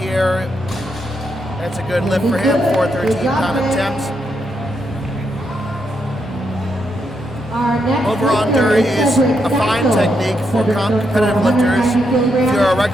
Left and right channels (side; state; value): both; normal; correlation 0.80